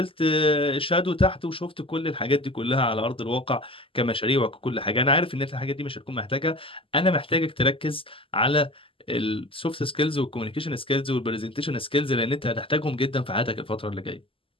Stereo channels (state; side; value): late; right; 0.26 ms